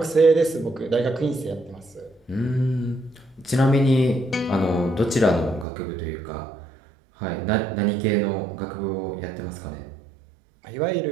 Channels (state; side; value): drops out; left; at 5.7 s